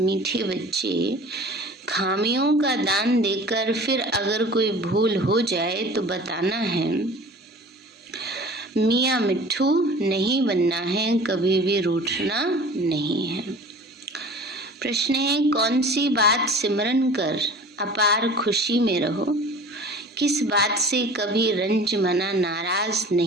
बच्चे, खामियों का दान देकर फिर अगर कोई भूल हो जाए तो बताना है। मियाँ मिट्ठू नहीं बनना है, कभी भी रूठना नहीं है। प्रश्न है, कौन सी बात सिमरन कर अपार खुशी में रहो? किस बात से कभी रंज मना नाराज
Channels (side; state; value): both; normal; correlation 0.42